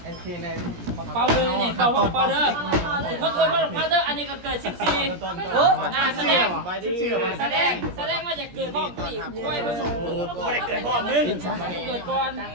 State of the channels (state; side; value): late; left; 17 ms